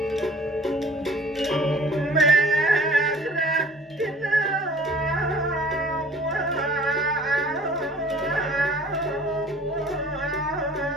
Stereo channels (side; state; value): both; normal; correlation 0.50